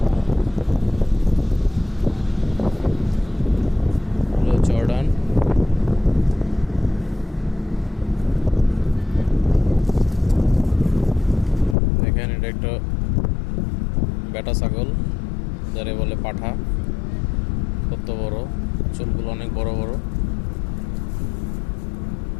জর্ডান দেখেন, এটা একটা বেটা ছাগল, যারে বলে পাঠা। কত বড়, চুলগুলো অনেক বড় বড়।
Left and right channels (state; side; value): drops out; right; at 11.8 s